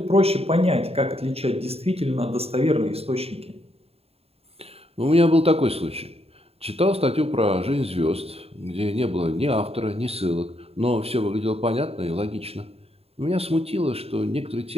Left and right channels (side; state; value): left; late; 0.29 ms